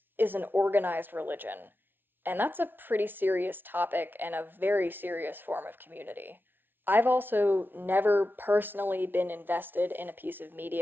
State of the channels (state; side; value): late; left; 0.099 ms